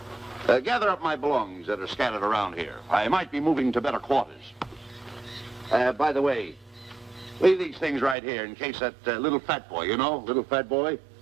Gather up my belongings that are scattered around here. I might be moving to better quarters. By the way, leave these things right here in case that little fat boy, you know, little fat boy,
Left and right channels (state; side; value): drops out; left; at 8.2 s